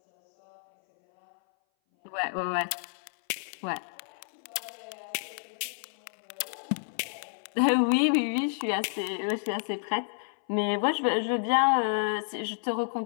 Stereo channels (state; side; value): silent; right; 58 dB below the other